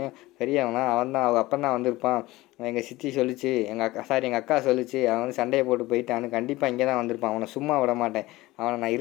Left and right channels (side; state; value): right; quieter; 19.0 dB